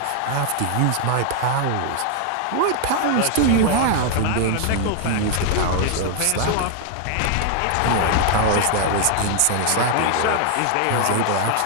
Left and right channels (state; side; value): different; both; correlation 0.00